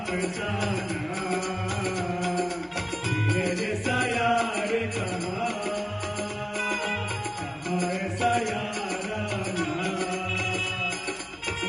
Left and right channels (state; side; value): identical; both; correlation 1.00